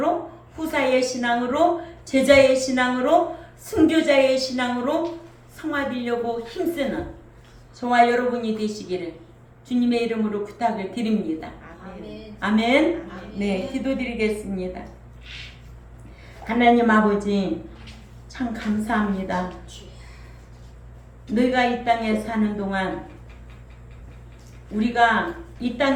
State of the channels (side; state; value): both; identical; correlation 1.00